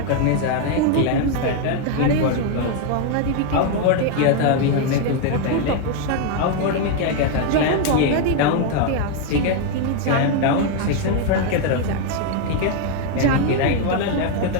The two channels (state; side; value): different; both; correlation 0.01